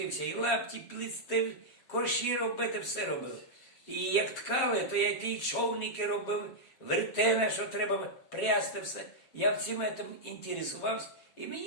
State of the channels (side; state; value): right; late; 7.5 ms